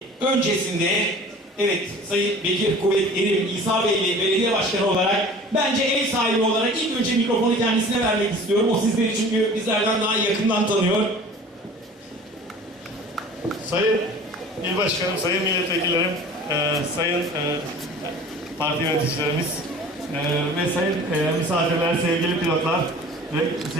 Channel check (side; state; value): both; normal; correlation 0.44